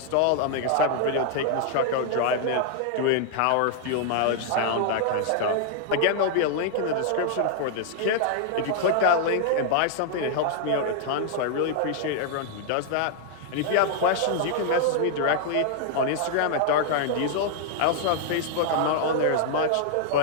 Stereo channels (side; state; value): both; different; correlation 0.00